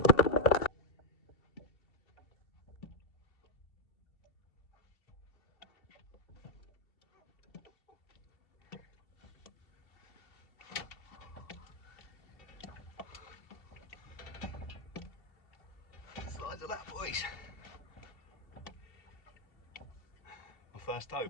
Size of that, boys. My first tope.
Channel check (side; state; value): right; late; 2.7 ms